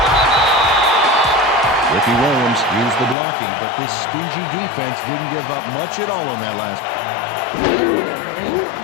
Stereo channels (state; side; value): drops out; right; at 3.2 s